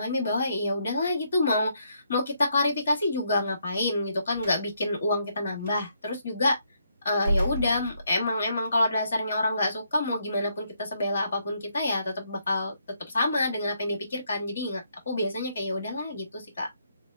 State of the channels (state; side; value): inverted; both; correlation -0.74